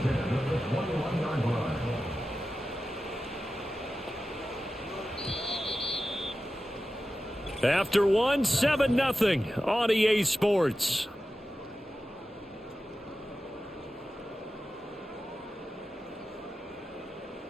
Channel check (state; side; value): normal; both; correlation 0.93